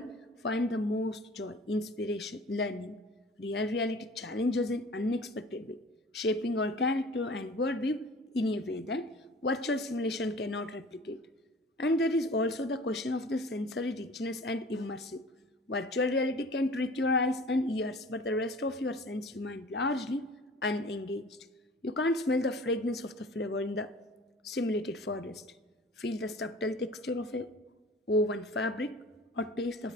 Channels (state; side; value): normal; both; correlation 0.45